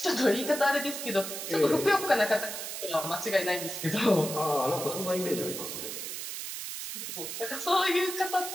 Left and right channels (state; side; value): noise; right; hiss, 6 dB below the sound